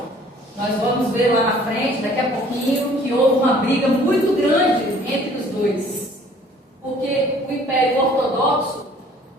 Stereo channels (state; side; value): normal; both; correlation 0.54